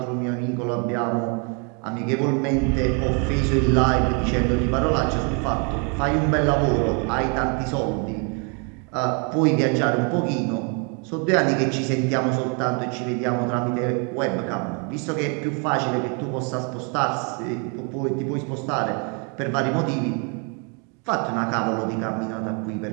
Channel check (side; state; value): left; quieter; 36.3 dB